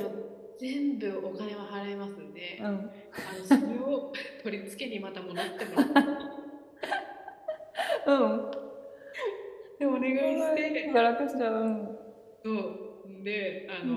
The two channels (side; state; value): both; identical; correlation 1.00